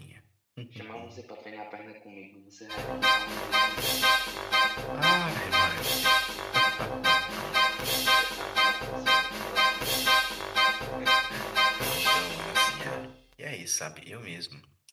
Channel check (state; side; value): identical; both; correlation 1.00